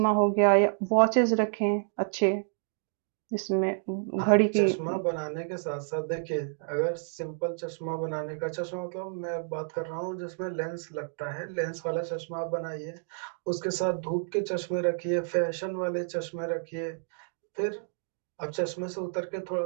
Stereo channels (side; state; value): left; silent; digital silence